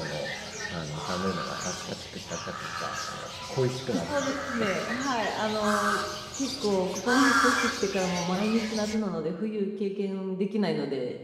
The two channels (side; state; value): both; identical; correlation 1.00